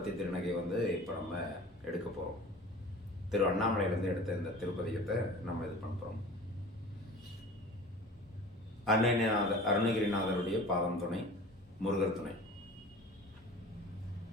திருநகை இப்போ நம்ம எடுக்க போகிறோம். திரு அண்ணாமலையிலேருந்து எடுத்த இந்த திருப்பதிகத்தை நம்ம இது பண்ண போகிறோம். அருணகிரிநாதருடைய பாதம் துணை, முருகர் துணை.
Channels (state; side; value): normal; both; correlation 0.40